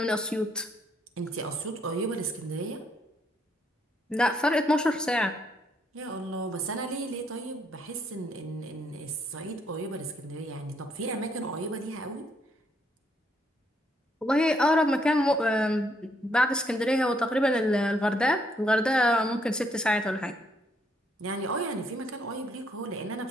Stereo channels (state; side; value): normal; both; correlation 0.71